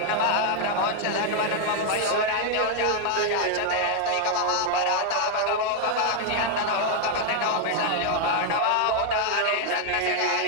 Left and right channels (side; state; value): both; different; correlation 0.00